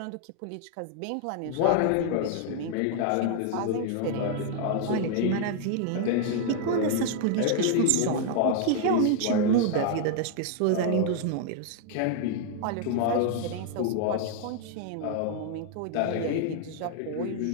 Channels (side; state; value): both; different; correlation 0.00